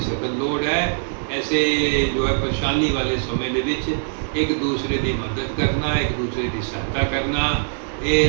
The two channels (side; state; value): left; silent; digital silence